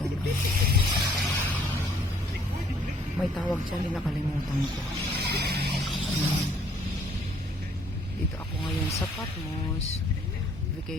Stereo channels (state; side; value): normal; both; correlation 0.61